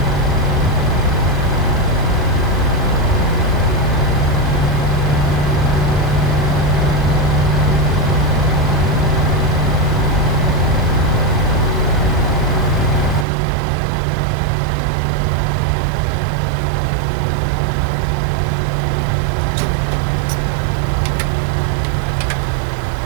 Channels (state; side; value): drops out; left; at 13.2 s